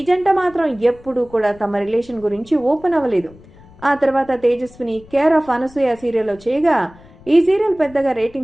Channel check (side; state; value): left; noise; rumble, 23 dB below the sound